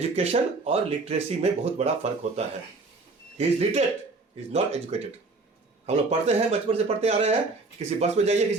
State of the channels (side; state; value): left; quieter; 3.6 dB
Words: और लिटरेसी में बहुत बड़ा फर्क होता है। He is literate, he is not educated. हम लोग पढ़ते हैं, बचपन से पढ़ते आ रहे हैं। किसी बस में जाइए,